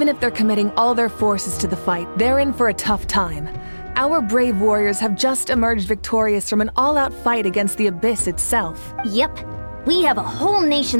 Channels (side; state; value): both; inverted; correlation -1.00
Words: if they're committing all their forces to the fight, they're in for a tough time. Our brave warriors have just emerged victorious from an all-out fight against the Abyss itself. Yep. We have a whole